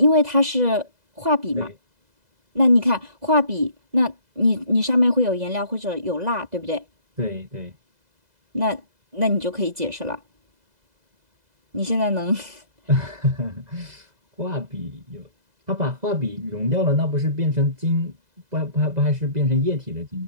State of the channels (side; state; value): left; late; 2.0 ms